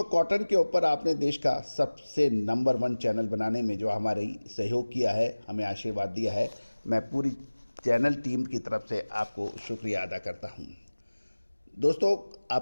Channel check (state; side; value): inverted; both; correlation -1.00